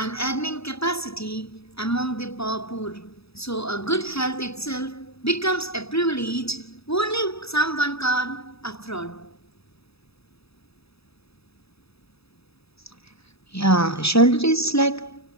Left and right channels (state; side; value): late; right; 0.78 ms